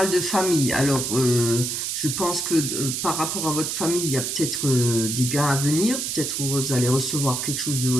de famille. Alors, je pense que par rapport à votre famille, il y a peut-être des gains à venir. Peut-être vous allez recevoir quelque chose de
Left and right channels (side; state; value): right; noise; hiss, 2 dB below the sound